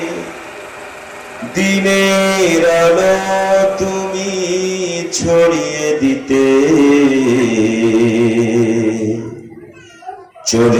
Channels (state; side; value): identical; both; correlation 1.00